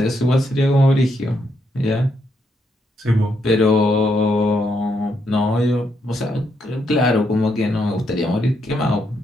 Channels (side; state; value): both; normal; correlation 0.77